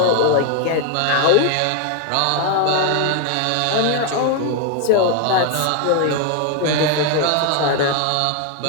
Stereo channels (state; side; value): different; both; correlation 0.01